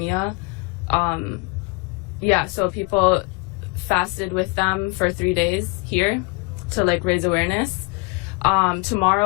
So people fasted with them for 3 days here to like raise awareness.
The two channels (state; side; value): quieter; right; 28.6 dB